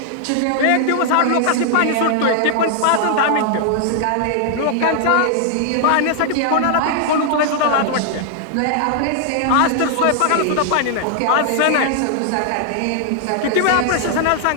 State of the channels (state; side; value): different; both; correlation 0.00